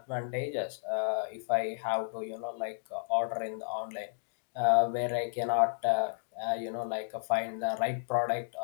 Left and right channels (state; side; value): silent; right; digital silence